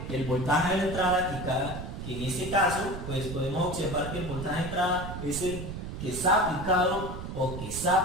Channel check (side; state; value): right; noise; rumble, 7 dB below the sound